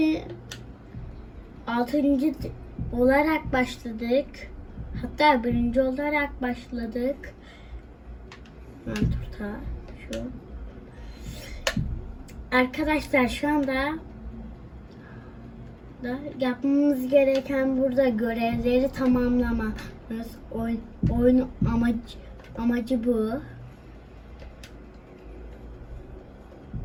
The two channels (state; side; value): identical; both; correlation 1.00